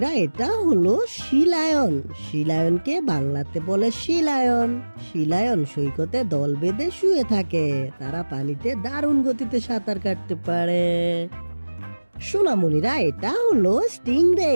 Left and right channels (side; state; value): both; inverted; correlation -1.00